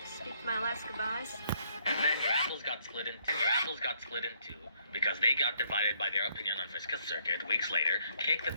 speak my last goodbyes. And then your apples got split in two because they got divided by their opinion on Vriska's circuit. Weeks later, Cake the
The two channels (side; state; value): both; inverted; correlation -0.68